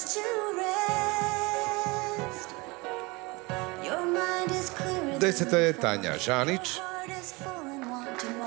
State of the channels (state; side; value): quieter; left; 25.4 dB